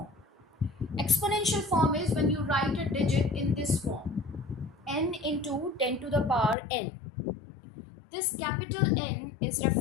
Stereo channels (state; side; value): drops out; right; at 6.6 s